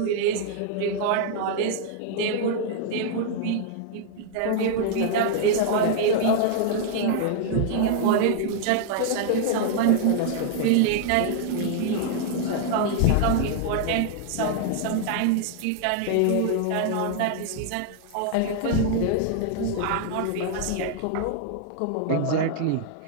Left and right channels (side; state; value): both; different; correlation -0.01